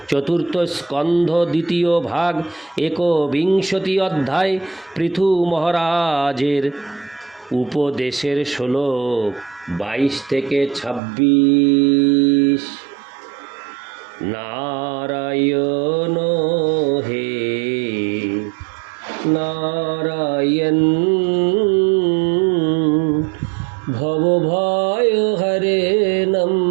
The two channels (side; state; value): left; drops out; at 11.0 s